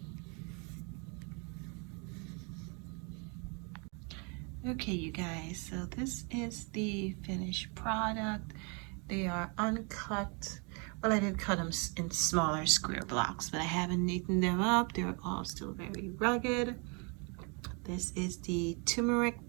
Okay, you guys, so this is the finished product. They are uncut. Well, I did cut them in smaller square blocks, but I haven't neatened them up. They're all still very rugged. This is the turmeric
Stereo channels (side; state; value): left; quieter; 34.1 dB